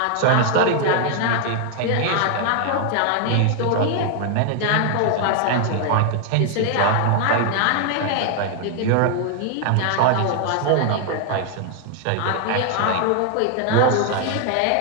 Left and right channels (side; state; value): both; different; correlation 0.00